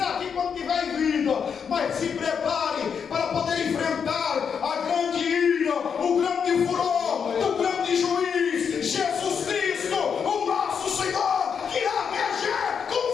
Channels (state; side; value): quieter; right; 6.8 dB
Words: aqui quando tiver em vida, mas se prepare para poder enfrentar a grande ira, o grande furor do grande juiz, Jesus Cristo, o nosso Senhor, que irá reger com